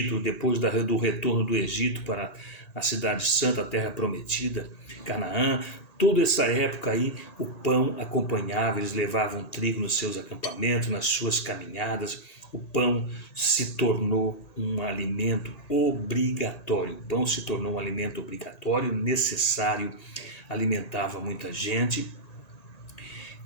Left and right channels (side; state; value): right; late; 1.8 ms